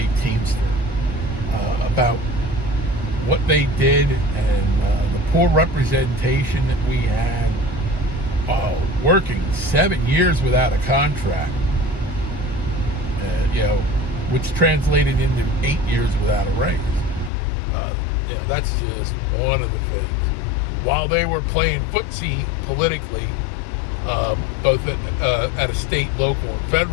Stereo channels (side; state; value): right; drops out; at 17.3 s